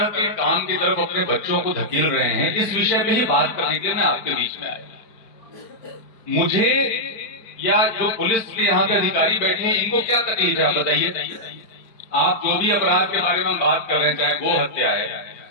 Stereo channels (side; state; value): right; late; 4.4 ms